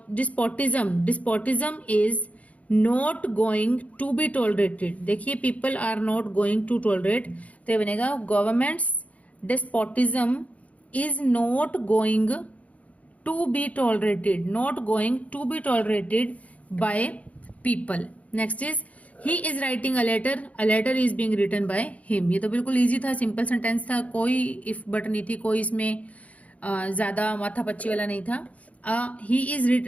Despotism is not going to be tolerated. देखिए people are not going to tolerate, तो ये बनेगा government's despotism is not going to be tolerated. Not going to be tolerated by people. Next is he is writing a letter. A letter is being written by him. ये तो बिल्कुल इजी था, सिंपल सेंटेंस था, कोई इफ बट नहीं थी, कोई इसमें ज्यादा माथा पच्ची वाला नहीं था. he is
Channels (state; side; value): late; right; 0.068 ms